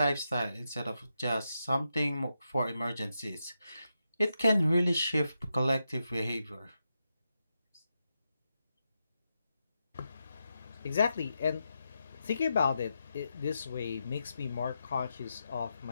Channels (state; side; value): inverted; both; correlation -0.86